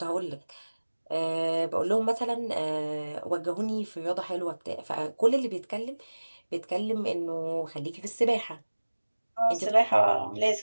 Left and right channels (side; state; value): both; inverted; correlation -1.00